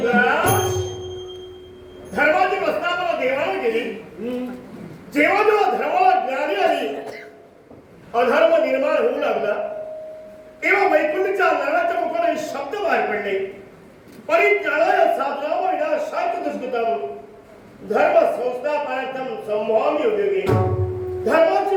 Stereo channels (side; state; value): both; identical; correlation 1.00